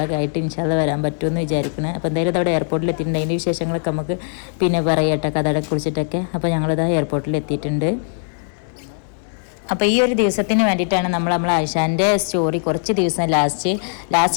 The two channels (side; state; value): right; silent; 66 dB below the other